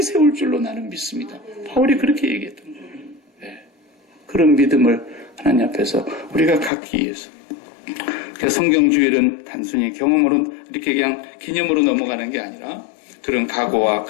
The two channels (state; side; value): drops out; right; at 6.7 s